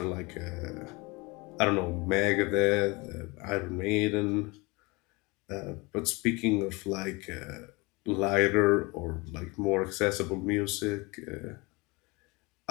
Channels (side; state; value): right; quieter; 25.8 dB